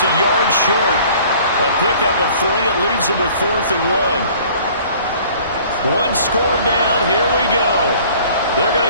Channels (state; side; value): inverted; both; correlation -0.51